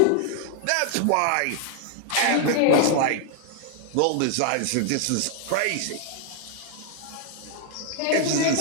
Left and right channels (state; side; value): different; both; correlation 0.00